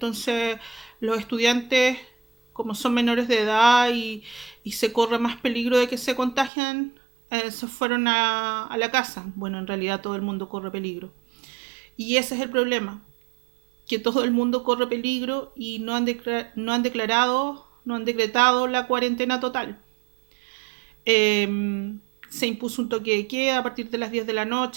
los estudiantes, como son menores de edad y se corre más peligro de que se contagian, se fueron a la casa. Bueno, en realidad todo el mundo corre peligro. Y ese es el problema, que todo el mundo corre peligro y no han decretado la cuarentena total. Se impuso un toque de queda a partir de las 10 de la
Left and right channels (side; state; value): left; drops out; at 6.5 s